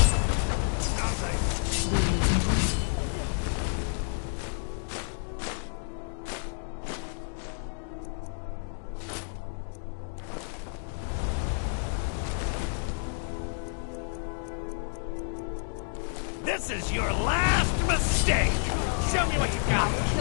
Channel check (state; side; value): silent; right; digital silence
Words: This is your last mistake! Show me what you got!